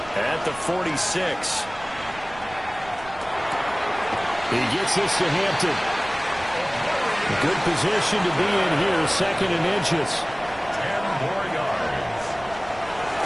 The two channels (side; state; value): right; noise; rumble, 19 dB below the sound